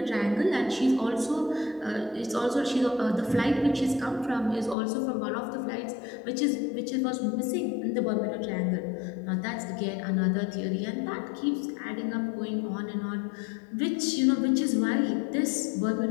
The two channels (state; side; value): drops out; right; at 4.8 s